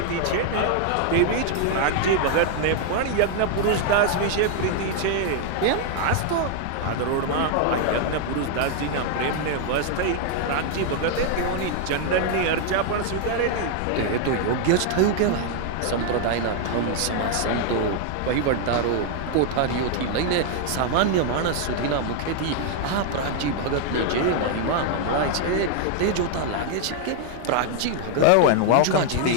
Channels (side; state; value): both; different; correlation 0.00